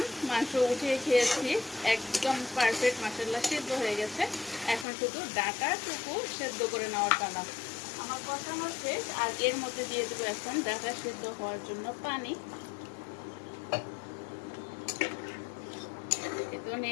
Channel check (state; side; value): drops out; right; at 4.9 s